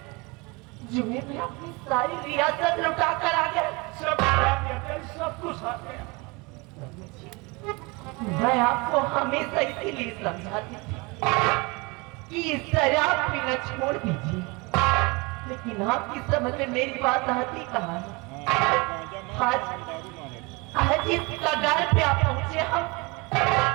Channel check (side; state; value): left; quieter; 27.0 dB